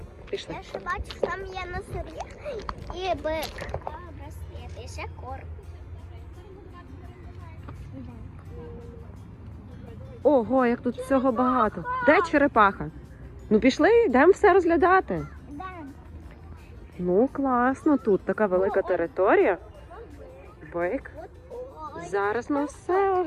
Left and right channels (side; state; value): both; identical; correlation 1.00